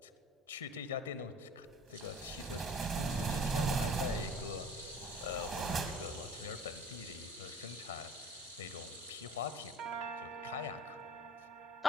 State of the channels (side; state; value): both; normal; correlation 0.48